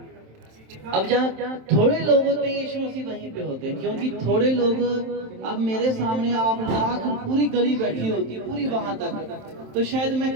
अब जहाँ थोड़े लोग होते हैं यीशु मसीह वहीं पे होते हैं, क्योंकि थोड़े लोग अब मेरे सामने आप लाख पूरी गली बैठी होती पूरी वहां तक तो शायद मैं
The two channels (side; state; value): left; late; 27 ms